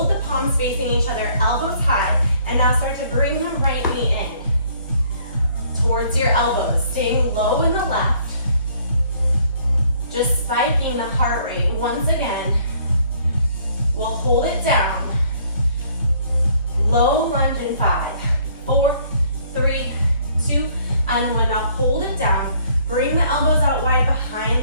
the palms facing each other, elbows high, and now start to bring the right knee in towards your elbows, staying low in the left, just spiking the heart rate. Once again, we'll hold it down, low lunge in 5, 4, 3, 2, and 1. Now hold it down, bring the elbows out wide behind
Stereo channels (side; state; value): both; inverted; correlation -0.62